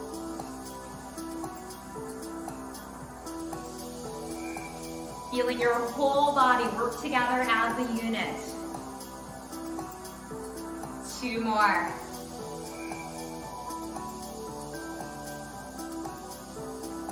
Feeling your whole body work together as a unit. Two more.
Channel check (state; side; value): identical; both; correlation 1.00